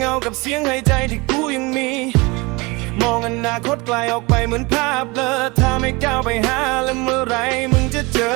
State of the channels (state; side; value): quieter; left; 25.6 dB